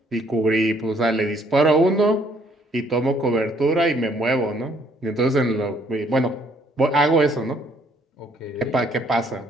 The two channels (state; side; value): normal; both; correlation 0.65